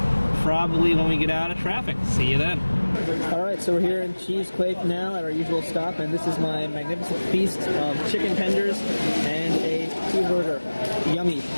probably when we get out of traffic. See you then. Alright, so we're here in Cheesequake now at our usual stop, and this is my magnificent feast of chicken tenders and a cheeseburger. Yummy.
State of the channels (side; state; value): both; inverted; correlation -1.00